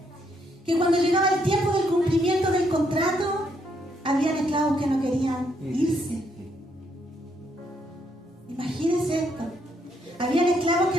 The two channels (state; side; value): normal; both; correlation 0.74